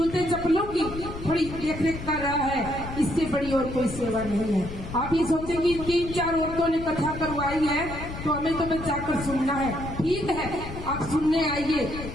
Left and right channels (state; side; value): noise; left; rumble, 10 dB below the sound